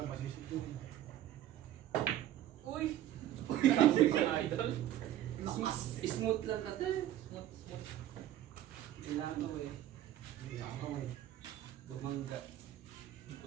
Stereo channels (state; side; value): quieter; left; 12.6 dB